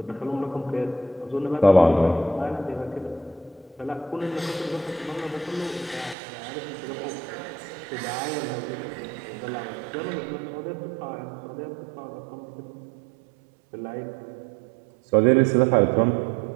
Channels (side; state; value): left; drops out; at 6.2 s